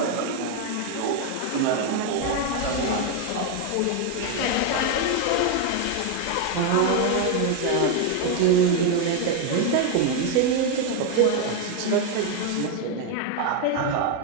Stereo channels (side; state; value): both; different; correlation 0.01